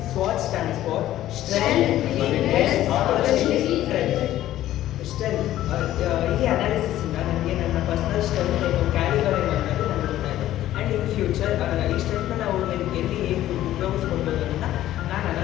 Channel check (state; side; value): quieter; right; 13.6 dB